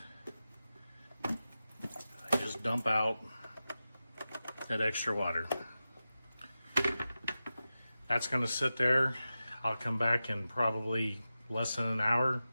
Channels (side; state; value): both; inverted; correlation -0.93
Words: I just dump out that extra water. That's going to sit there. I'll come back in probably less than an hour,